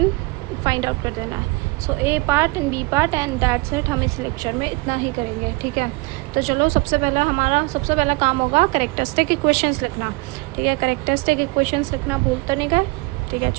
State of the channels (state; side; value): quieter; left; 25.8 dB